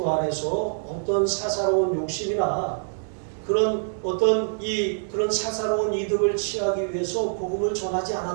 안에서 어떤 사사로운 욕심이나 그런 그런 사사로운 이득을 취하기 위해서 복음을 전하지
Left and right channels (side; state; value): left; silent; digital silence